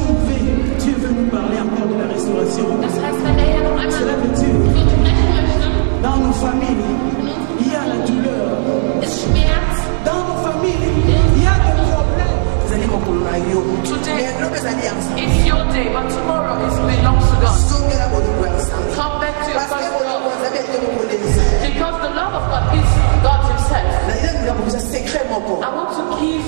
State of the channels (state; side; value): silent; left; digital silence